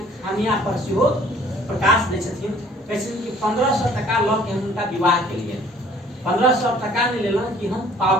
खामियां पर सेहो प्रकाश दै छथिन। कहै छथिन कि 1500 टका लऽ के हम उनका विवाह केलिए, 1500 टका नहीं लेलहुँ कि हम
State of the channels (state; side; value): normal; both; correlation 0.55